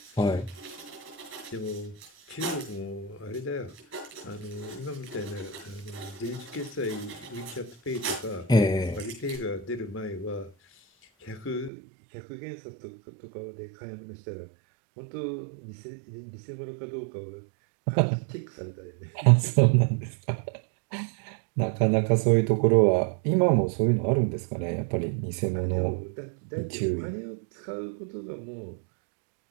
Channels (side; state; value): left; drops out; at 11.7 s